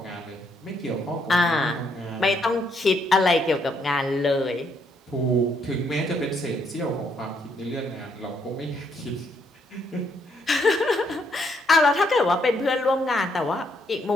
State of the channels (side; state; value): both; normal; correlation 0.73